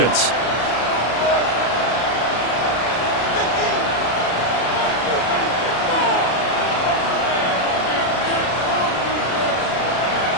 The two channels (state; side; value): late; right; 33 ms